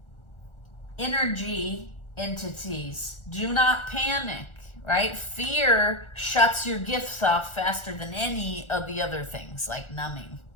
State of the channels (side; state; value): right; late; 1.4 ms